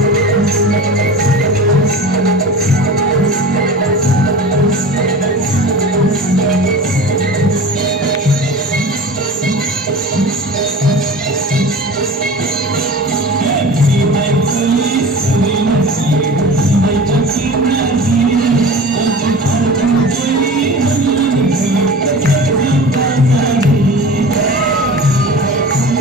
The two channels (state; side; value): normal; both; correlation 0.35